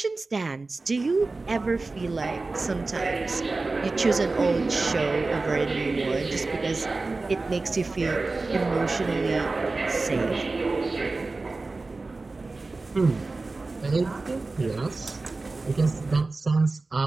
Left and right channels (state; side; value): quieter; left; 3.5 dB